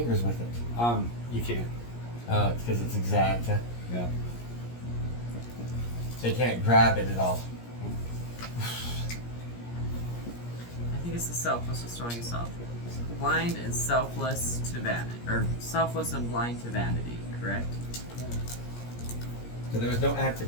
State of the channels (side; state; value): right; late; 17 ms